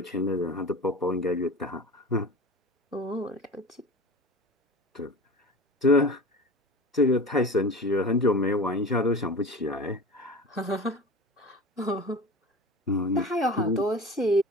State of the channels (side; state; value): both; normal; correlation 0.34